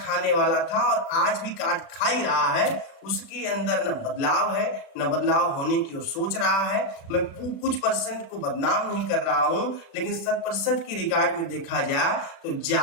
वाला था और आज भी काट खा ही रहा है। उसके अंदर न बदलाव है, न बदलाव होने की वो सोच रहा है। मैं कुछ परसेंट को बदनाम नहीं कर रहा हूं, लेकिन 100% की रिकॉर्ड में देखा जाए तो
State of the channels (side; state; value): right; late; 36 ms